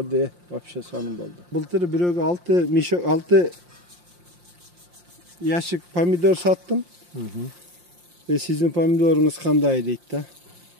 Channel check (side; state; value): left; late; 5.7 ms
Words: вообще сонун болду. Былтыр бирөөгө 6 ящик помидор саттым. Sizin pomidorunuz kандай deydi da.